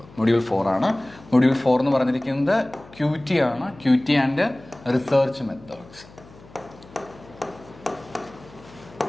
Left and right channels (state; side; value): noise; left; hum, 22 dB below the sound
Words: മൊഡ്യൂൾ 4 ആണ്. മൊഡ്യൂൾ 4 എന്ന് പറഞ്ഞിരിക്കുന്നത് QT ആണ്. QT and research methods.